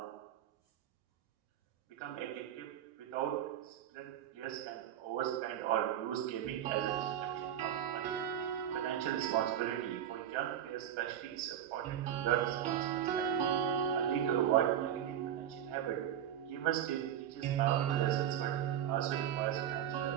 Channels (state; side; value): quieter; left; 10.4 dB